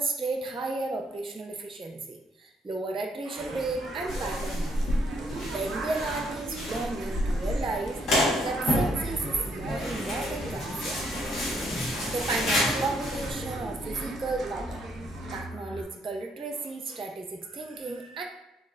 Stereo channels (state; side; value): normal; both; correlation 0.71